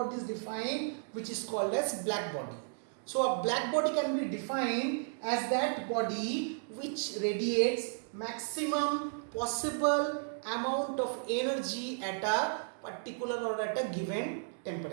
is defined, which is called as black body. So a black body can be defined as that body which radiates maximum possible amount of energy at a particular or at a given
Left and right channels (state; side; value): silent; left; digital silence